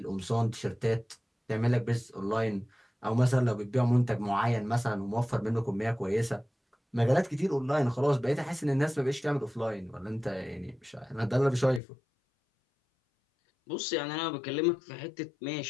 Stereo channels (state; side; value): drops out; right; at 11.8 s